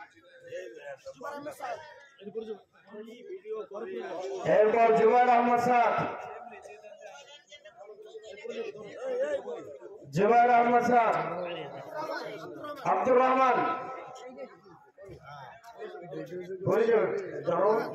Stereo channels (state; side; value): identical; both; correlation 1.00